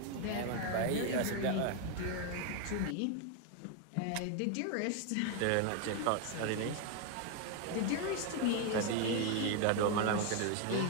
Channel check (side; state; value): both; different; correlation 0.01